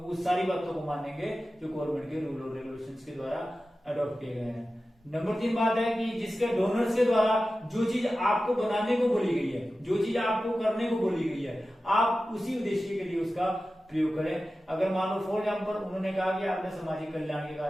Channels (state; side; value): normal; both; correlation 0.94